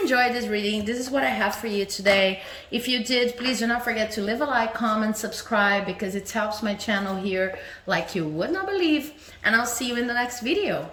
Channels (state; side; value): identical; both; correlation 1.00